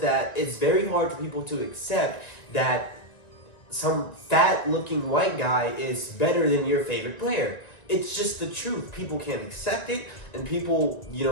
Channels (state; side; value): late; right; 1.9 ms